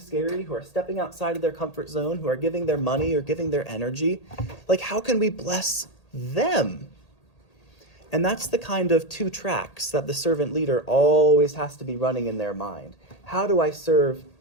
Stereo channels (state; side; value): late; right; 1.8 ms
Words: who are stepping outside of their comfort zone, who are giving their money or giving their energy. Like, how can we bless them? And that's the kind of two tracks that the servant leader always has to be running in their mind. How do I serve